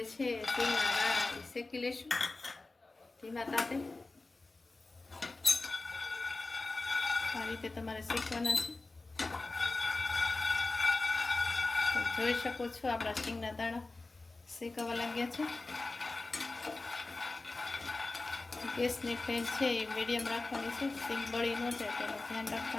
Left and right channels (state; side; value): quieter; right; 3.3 dB